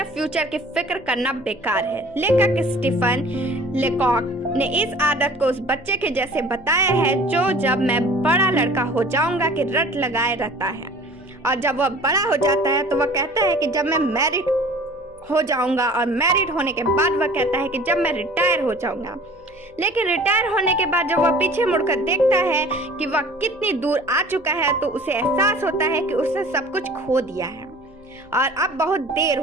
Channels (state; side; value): noise; right; hum, 29 dB below the sound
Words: फ्यूचर की फिक्र करना बेकार है। लेखक स्टीफन लेकॉक ने इस आदत को उस बच्चे के जैसे बताया है जो जब मैं बड़ा लड़का हो जाऊंगा कि रट लगाए रहता है, और जब वह बड़ा हो जाता है तो वह कहता है कि जब मैं मैरिड हो जाऊंगा, और मैरिड होने के बाद वह कहता है कि जब मैं रिटायर हो जाऊंगा। लेकिन रिटायर होने के बाद जब वह पीछे मुड़कर देखता है कि वह कितनी दूर आ चुका है तो उसे एहसास होता है कि उसने सब कुछ खो दिया है और अब बहुत देर